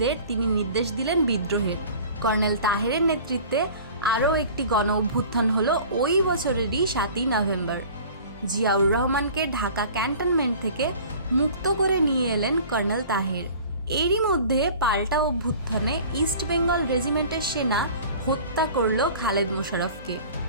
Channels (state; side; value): inverted; both; correlation -0.44